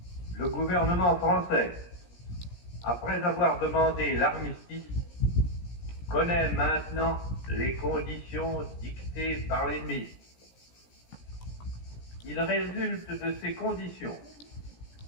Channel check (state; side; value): late; right; 17 ms